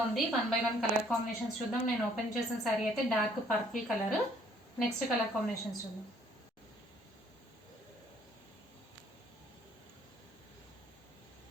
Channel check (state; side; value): normal; both; correlation 0.62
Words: ఉంది. 1 by 1 కలర్ కాంబినేషన్స్ చూద్దాం. నేను ఓపెన్ చేసిన శారీ అయితే dark purple colour. Next colour combinations చూద్దాం.